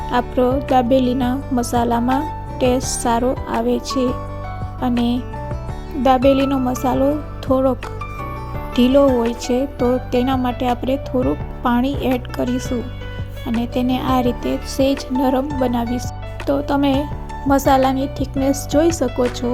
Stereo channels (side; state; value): both; identical; correlation 1.00